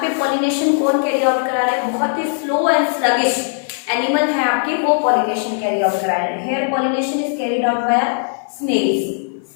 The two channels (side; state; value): right; silent; 55 dB below the other